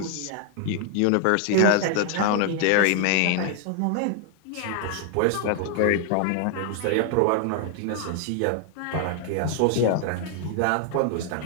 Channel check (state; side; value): different; both; correlation 0.00